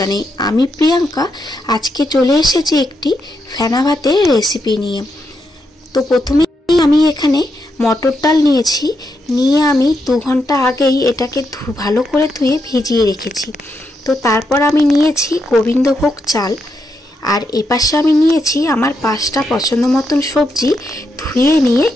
আমি প্রিয়াঙ্কা। আজকে চলে এসেছি একটি ফেনা ভাতের রেসিপি নিয়ে। তো প্রথমেই আমি এখানে মটর ডাল নিয়েছি। নিয়ে আমি 2 ঘন্টা আগেই এটাকে ভালো করে ধুয়ে ভিজিয়ে রেখেছি। তো তারপর আমি নিয়েছি গোবিন্দভোগ চাল। আর এপাশে আমি নিয়েছি আমার 5টা পছন্দ মতন সবজি ধুয়ে নিয়ে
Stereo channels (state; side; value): normal; both; correlation 0.82